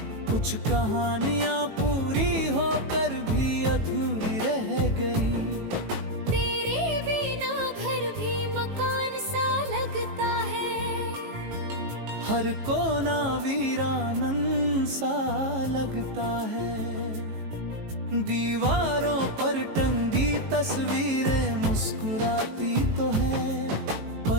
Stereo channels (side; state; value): left; late; 18 ms